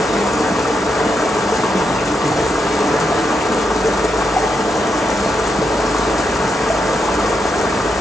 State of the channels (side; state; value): both; normal; correlation 0.83